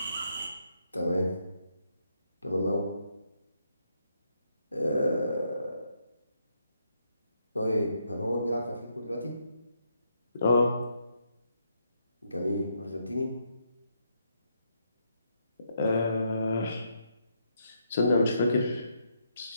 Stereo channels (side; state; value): both; inverted; correlation -0.77